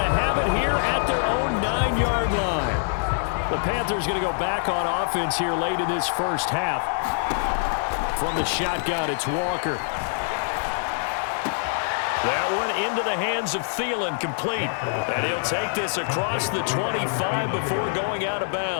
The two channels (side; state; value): right; silent; 62 dB below the other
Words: to have it here at their own 9-yard line. The Panthers going to go back on offense here late in this first half. From the shotgun, it's Walker. That one into the hands of Thielen, complete. And he'll take this across the 25 before going out of